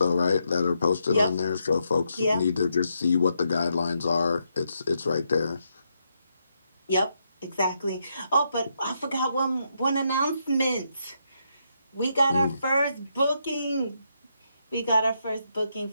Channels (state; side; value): inverted; both; correlation -0.80